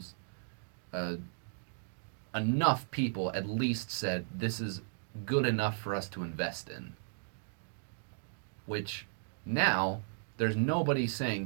uh, enough people at least said this is good enough for us to invest in. Which now there's nobody saying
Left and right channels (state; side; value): silent; left; digital silence